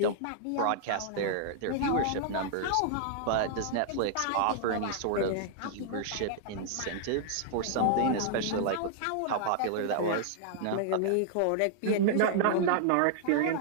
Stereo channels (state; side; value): different; both; correlation -0.01